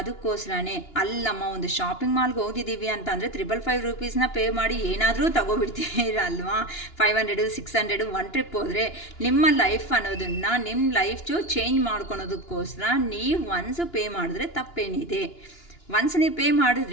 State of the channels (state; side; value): late; right; 2.9 ms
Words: ಅಲ್ಲಮ್ಮ ಒಂದು ಶಾಪಿಂಗ್ ಮಾಲ್ಗೆ ಹೋಗಿದ್ದೀವಿ ಅಂತ ಅಂದರೆ 555 ರೂಪೀಸ್ನ ಪೇ ಮಾಡಿ ಏನಾದರೂ ತಗೋಬಿಡ್ತೀರಲ್ವಾ. 500 600 ಒನ್ ಟ್ರಿಪ್ ಹೋದರೆ ನಿಮ್ಮ ಲೈಫ್ ಅನ್ನೋದನ್ನು ನಿಮ್ಮ ಲೈಫು ಚೇಂಜ್ ಮಾಡ್ಕೊಳೋದಕ್ಕೋಸ್ಕರ ನೀವು ಒನ್ಸು ಪೇ ಮಾಡಿದ್ರೆ ತಪ್ಪೇನಿದೆ. ಒನ್ಸ್ ನೀವು ಪೇ